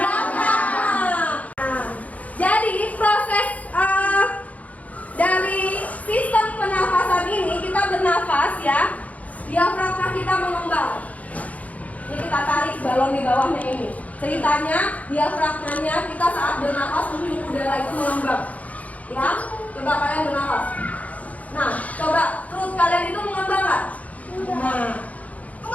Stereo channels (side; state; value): right; late; 0.070 ms